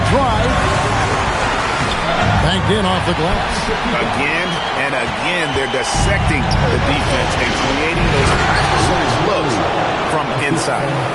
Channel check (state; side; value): identical; both; correlation 1.00